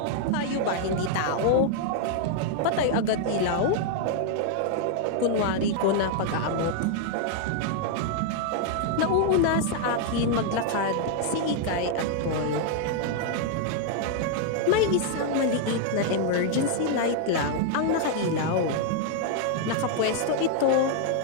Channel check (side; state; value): both; different; correlation 0.00